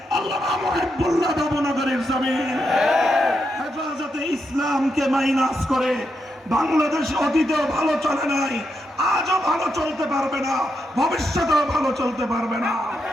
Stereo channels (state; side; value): normal; both; correlation 0.83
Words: আল্লামা মুহিবুল্লাহ বাবুনগরীর জমিন। হেফাজতে ইসলামকে মাইনাস করে বাংলাদেশ অতীতেও ভালো চলে নাই, আজও ভালো চলতে পারবে না, ভবিষ্যতেও ভালো চলতে পারবে না।